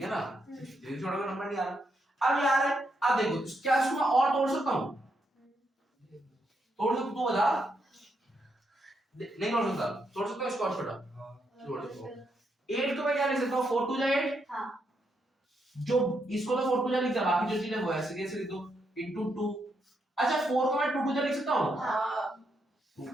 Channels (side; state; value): both; normal; correlation 0.79